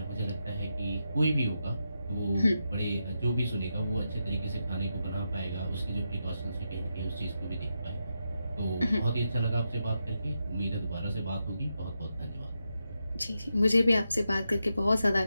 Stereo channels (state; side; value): inverted; both; correlation -0.86